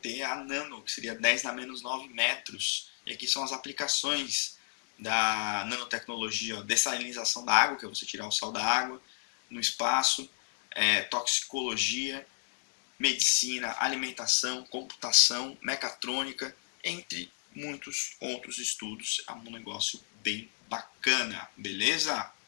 a nano, que seria 10 na menos 9 metros. E aqui são as aplicações da nanotecnologia, ó, dessalinização da água, que é você tirar o sal da água, no espaço, toxicologia, medicina, alimentação, computação, mecatrônica, entre muitos outros estudos. É um negócio bem bacana, beleza?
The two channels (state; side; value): silent; right; digital silence